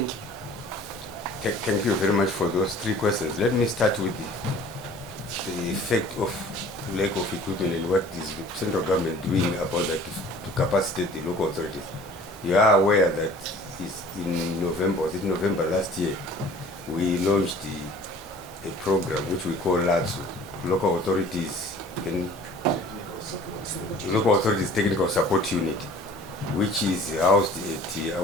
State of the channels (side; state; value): both; normal; correlation 0.48